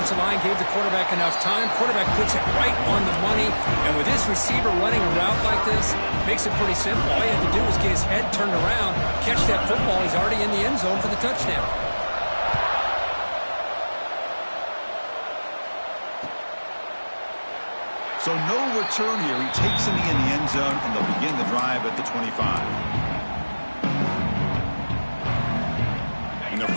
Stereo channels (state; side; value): inverted; both; correlation -1.00